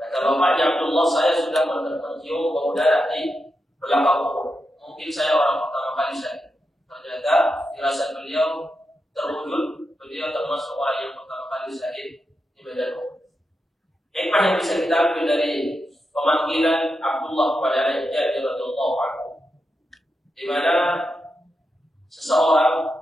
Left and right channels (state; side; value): normal; both; correlation 0.87